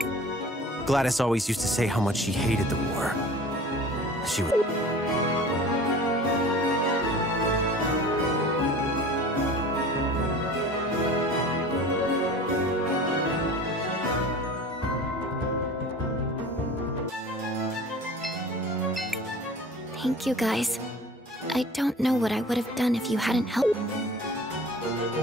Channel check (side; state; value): both; normal; correlation 0.42